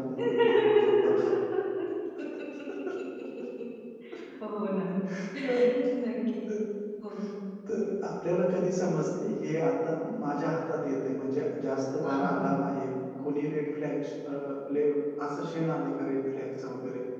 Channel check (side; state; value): both; identical; correlation 1.00